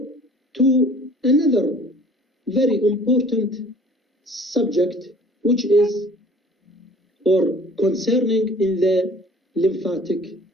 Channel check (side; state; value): both; normal; correlation 0.50